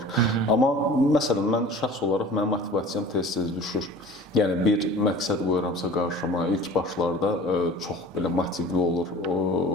Amma məsələn mən şəxs olaraq mənim motivasiyam tez-tez düşür. Yəni bir məqsəd qoyuramsa qarşıma, ilk başlarda çox belə motivli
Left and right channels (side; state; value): both; normal; correlation 0.43